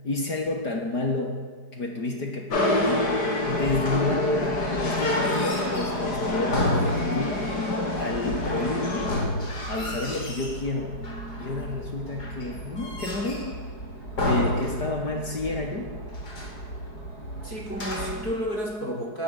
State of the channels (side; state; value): right; late; 5.0 ms